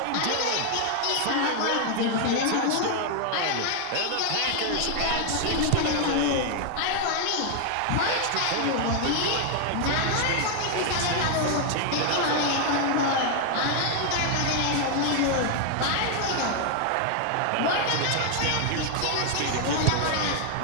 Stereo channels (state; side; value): different; both; correlation 0.00